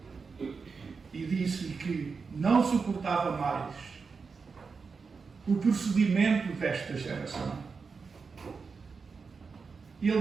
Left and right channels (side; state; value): left; quieter; 5.0 dB